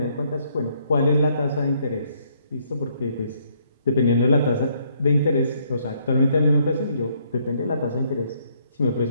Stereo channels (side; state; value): both; inverted; correlation -0.69